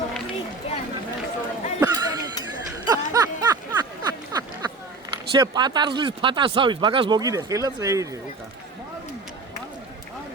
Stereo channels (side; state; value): left; quieter; 3.6 dB